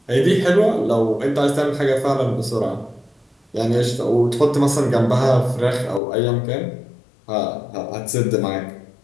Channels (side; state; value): right; drops out; at 6.0 s